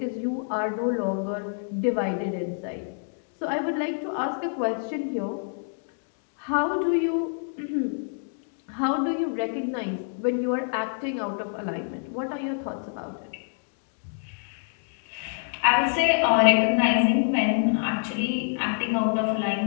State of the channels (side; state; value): right; silent; digital silence